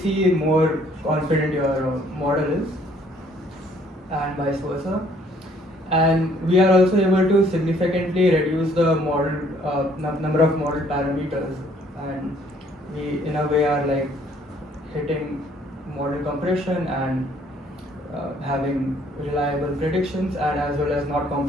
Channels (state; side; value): normal; both; correlation 0.62